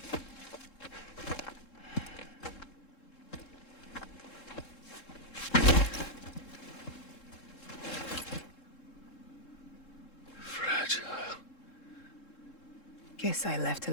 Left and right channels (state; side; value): late; right; 3.7 ms